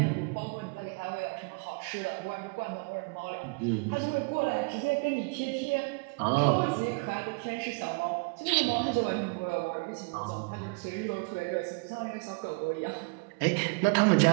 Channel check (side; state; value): left; quieter; 32.1 dB